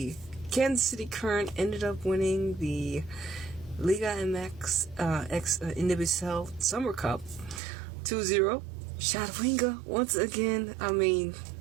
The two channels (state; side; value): drops out; left; at 7.6 s